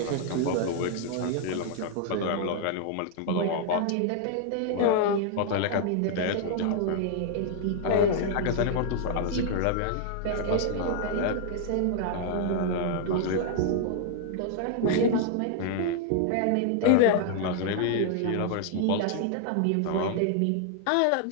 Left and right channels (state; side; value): different; both; correlation 0.00